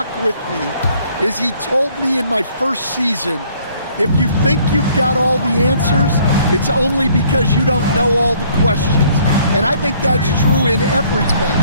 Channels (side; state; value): both; inverted; correlation -0.61